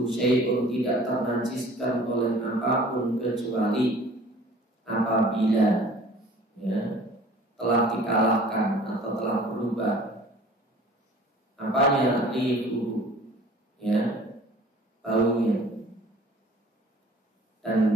syai'un, tidak ternajiskan oleh apapun kecuali apabila, ya, telah dikalahkan atau telah berubah apanya, rihu, ya, baunya dan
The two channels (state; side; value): normal; both; correlation 0.48